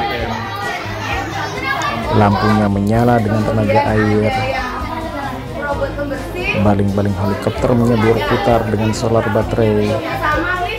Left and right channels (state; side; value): identical; both; correlation 1.00